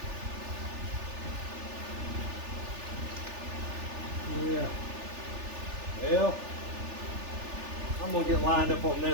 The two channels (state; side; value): late; left; 3.4 ms